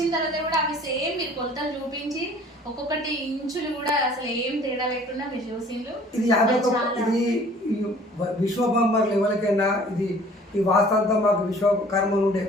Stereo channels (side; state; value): both; normal; correlation 0.51